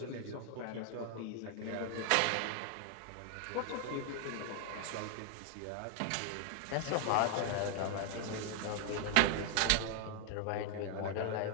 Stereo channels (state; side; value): different; both; correlation 0.00